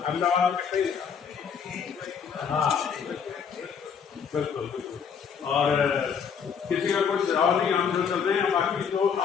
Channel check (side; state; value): right; quieter; 6.8 dB